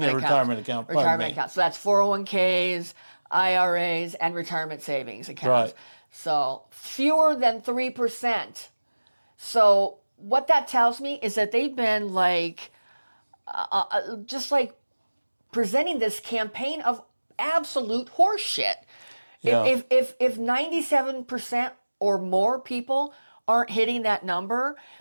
accounts. retirement account, pardon Retirement me. accounts. So that's 401ks, IRAs, and retirement savings accounts. Right. So fewer than 3%. So what that tells me is that they've been like, just like presenting this campaign of absolute horseshit. Yeah. If 97% or more people aren't hitting that number,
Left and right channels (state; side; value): inverted; both; correlation -1.00